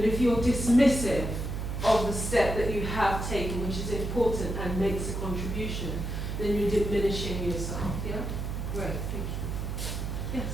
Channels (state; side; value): noise; right; hum, 4 dB below the sound